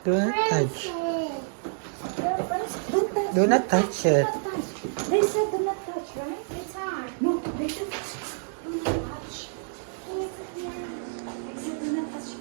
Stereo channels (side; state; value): left; silent; digital silence